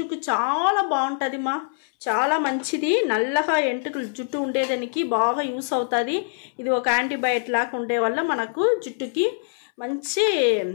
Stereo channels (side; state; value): right; silent; 63 dB below the other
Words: చాలా బాగుంటుంది మా, చాలా మంచిది. నల్లగా ఎంటుకలు జుట్టు ఉండేదానికి బాగా యూస్ అవుతుంది. ఇది ఒక యాంటీబయాటిక్ లాగా ఉండే వల్ల మనకు జుట్టుకి మంచి